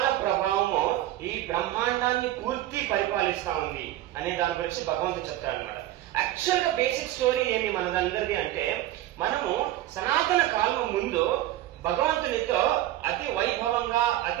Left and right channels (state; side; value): quieter; left; 14.4 dB